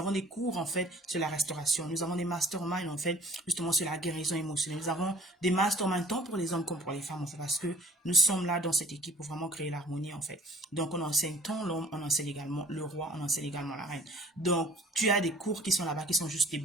des cours en fait sur la restauration. Nous avons des masterminds en fait justement sur la guérison émotionnelle. Nous avons des masterminds tant pour les hommes comme pour les femmes en fait parce que nous sommes là dans cette équipe pour vraiment créer l'harmonie en fait. Donc on enseigne tant l'homme, on enseigne également le roi, on enseigne également la reine. Donc tu as des cours qui sont là-bas qui sont juste des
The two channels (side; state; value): both; normal; correlation 0.52